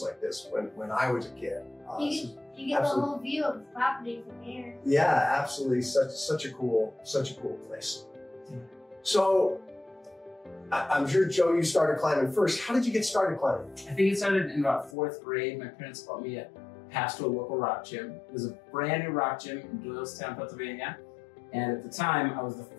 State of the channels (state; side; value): drops out; right; at 15.0 s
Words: like this when I was a kid. You get the whole view of the property from here. Yeah, absolutely. Such a cool place. So I'm sure, Joe, you started climbing first. How did you get started climbing? I think it started in about 4th grade. My parents bought me a pass to a local rock gym. It was a brand new rock gym in Doylestown, Pennsylvania. And at the time, I was the